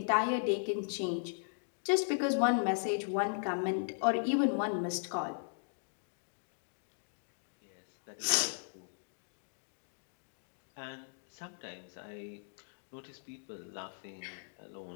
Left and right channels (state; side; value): silent; right; digital silence